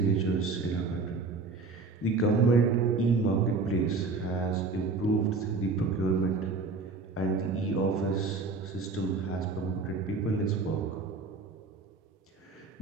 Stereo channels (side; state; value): left; quieter; 4.0 dB